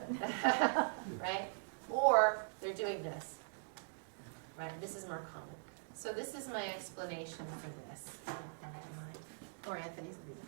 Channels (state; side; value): silent; left; digital silence